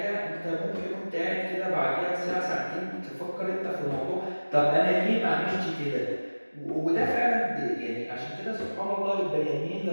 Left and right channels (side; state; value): both; inverted; correlation -1.00